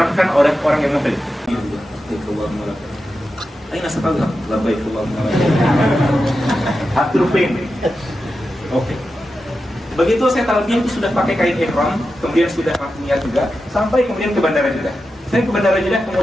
oleh orang yang muhrim. Aina satallah labbaik Allahumma labbaik. Oke. Begitu saya talbiyah itu sudah pakai kain ihram, kemudian sudah niat juga, sampai kemudian ke bandara Jeddah. Saya ke bandara Jeddah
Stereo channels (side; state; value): both; normal; correlation 0.90